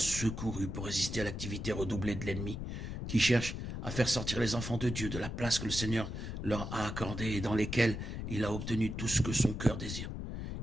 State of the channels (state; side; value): noise; left; rumble, 5 dB below the sound